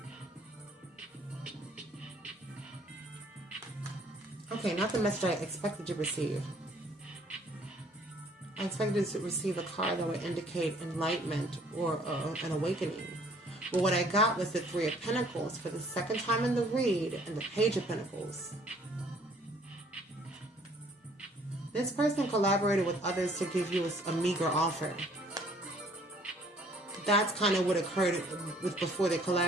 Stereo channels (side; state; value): both; normal; correlation 0.59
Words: Okay, not the message I expected to receive. I expected to receive a card that would indicate enlightenment or an awakening. But what I got was the Three of Pentacles for the second time in the read and the Page of Pentacles. This person collaborated with others to give you a meager offer. That's kind of what occurred before they